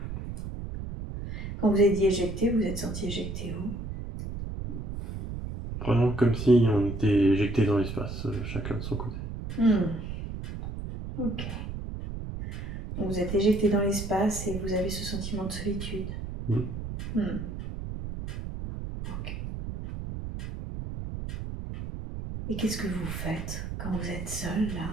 Quand vous avez dit éjecté, vous êtes senti éjecté où? Vraiment comme si on était éjecté dans l'espace, chacun de son côté. Ok. Donc vous êtes éjecté dans l'espace et vous avez ce sentiment de solitude. Ok. Et qu'est-ce que vous faites quand vous êtes seul là,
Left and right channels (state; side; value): noise; right; rumble, 7 dB below the sound